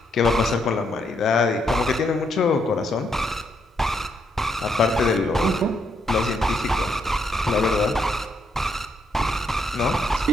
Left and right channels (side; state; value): both; normal; correlation 0.76